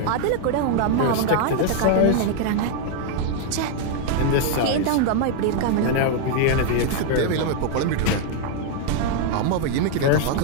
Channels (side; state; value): both; different; correlation 0.00